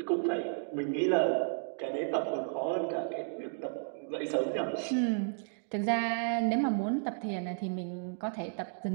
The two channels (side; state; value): left; silent; digital silence